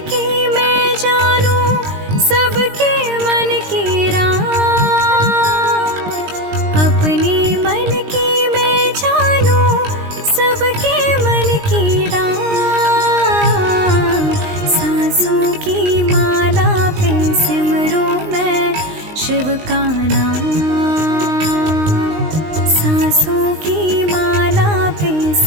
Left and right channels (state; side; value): late; left; 19 ms